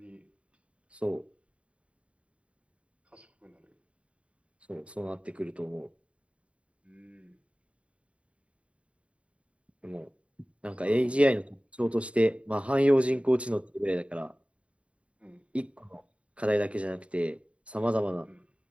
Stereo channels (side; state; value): left; late; 0.062 ms